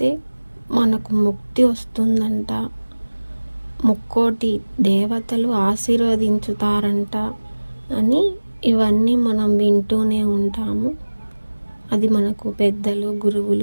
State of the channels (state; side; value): inverted; both; correlation -1.00